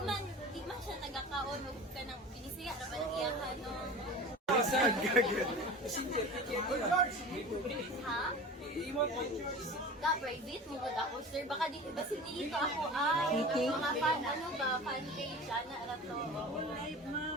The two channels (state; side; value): normal; both; correlation 0.35